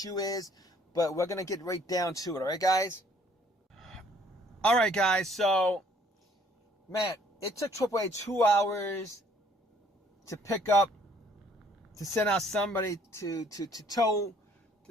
is, but we're going to get right down to it. All right, guys? All right, guys. So, man, it took AAA 2 hours to pick up, to send out somebody to tow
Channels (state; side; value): normal; both; correlation 0.61